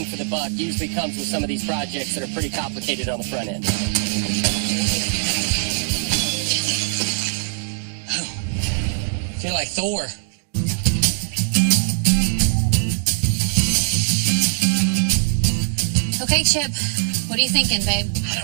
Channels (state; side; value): silent; left; 62 dB below the other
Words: for the buck usually comes with some of these projects that are pretty complicated on the front end. I feel like Thor. Okay, Chip, what are you thinking, babe? I